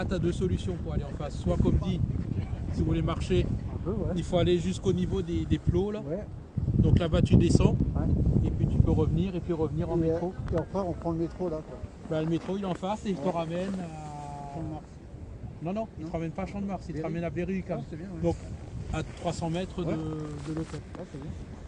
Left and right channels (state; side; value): identical; both; correlation 1.00